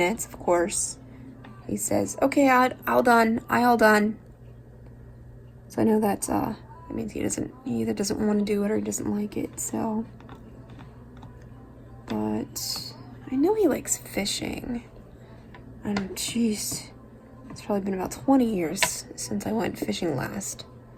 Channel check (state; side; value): identical; both; correlation 1.00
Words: of course, he says, okay, I all done. So I know that's that means he either doesn't want to do it or he doesn't like it, so. But I know he likes fishing. And jeez, it's probably been about 20 years since I went fishing last.